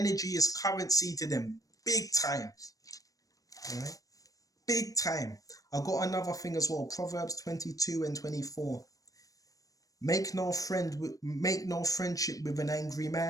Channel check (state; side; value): late; right; 0.17 ms